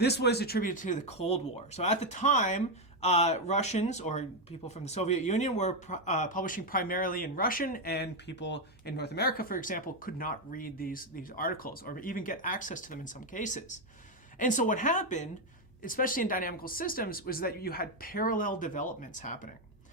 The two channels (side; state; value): both; normal; correlation 0.05